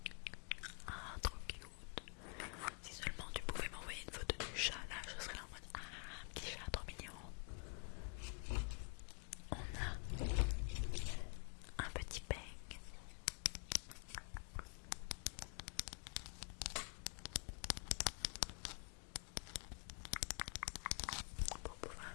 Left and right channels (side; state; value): right; quieter; 37.4 dB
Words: Ah, trop cute. Si seulement tu pouvais m'envoyer une photo du chat, là, je serais là en mode ah, un petit chat trop mignon. On a un petit peigne. Pour pouvoir